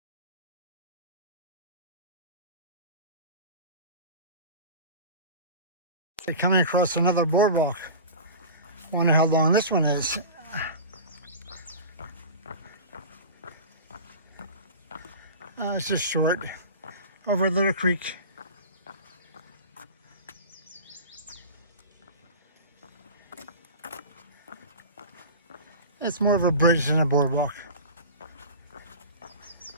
Coming across another boardwalk. Wonder how long this one is. It's just short, over a little creek. It's more of a bridge than a boardwalk.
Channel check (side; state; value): both; inverted; correlation -0.33